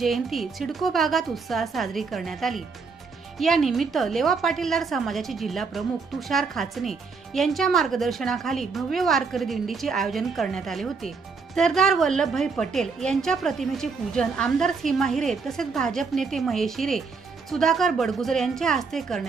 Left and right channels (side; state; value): left; quieter; 4.8 dB